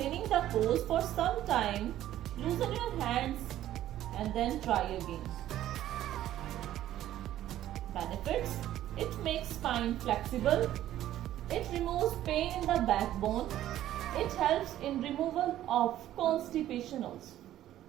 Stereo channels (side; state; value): left; quieter; 12.9 dB